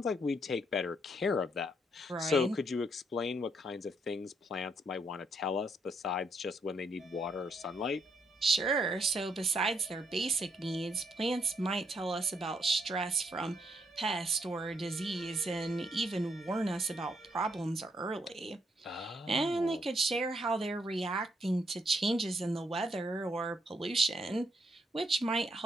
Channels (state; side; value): normal; both; correlation 0.74